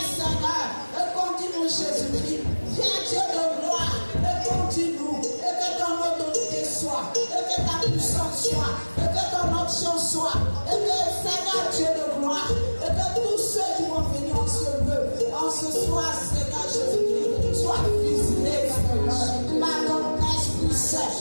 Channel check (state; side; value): inverted; both; correlation -1.00